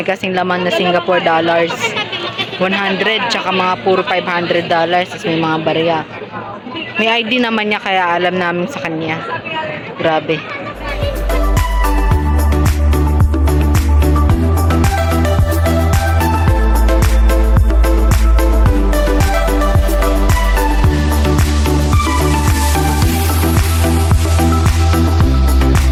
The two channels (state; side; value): identical; both; correlation 1.00